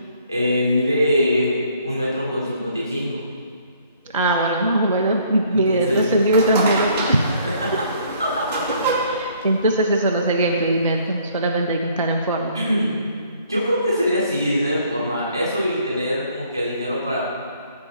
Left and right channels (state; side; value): inverted; both; correlation -0.62